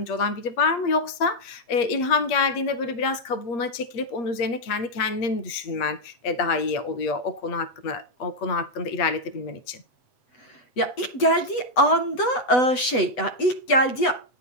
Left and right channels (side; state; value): right; late; 8.0 ms